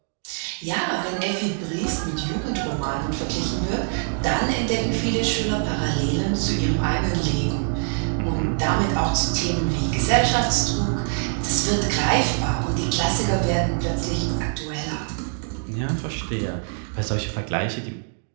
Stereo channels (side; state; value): left; silent; digital silence